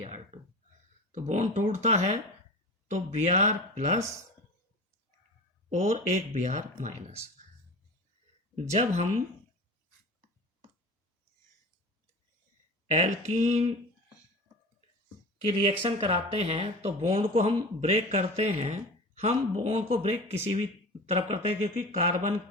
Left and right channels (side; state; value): both; normal; correlation 0.34